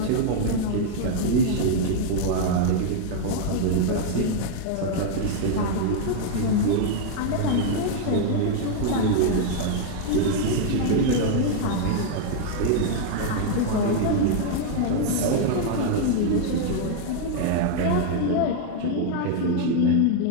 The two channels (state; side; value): different; both; correlation 0.00